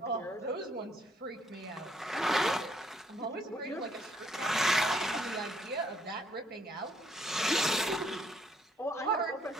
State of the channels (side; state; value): both; normal; correlation 0.68